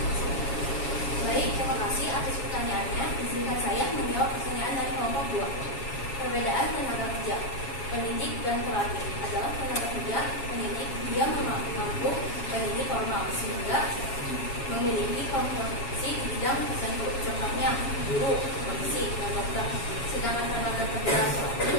Baik, terima kasih atas pertanyaannya. Izinkan saya menjawab pertanyaan dari kelompok 2. Perbedaan tenaga kerja pendidik dan terlatih adalah tenaga kerja pendidik dia mampu pendidik formal sehingga memiliki kompetensi di bidang tertentu, contohnya guru, polisi, dan dokter. Sedangkan tenaga kerja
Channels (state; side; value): late; right; 7.3 ms